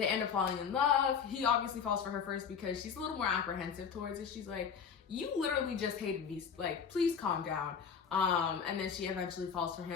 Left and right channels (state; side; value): quieter; right; 6.8 dB